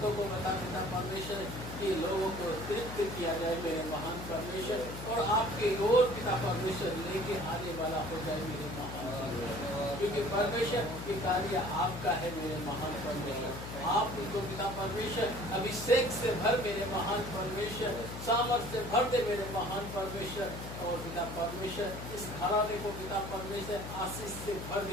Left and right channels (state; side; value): noise; left; hum, 9 dB below the sound